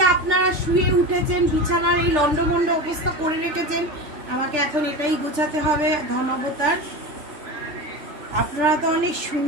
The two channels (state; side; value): late; left; 3.3 ms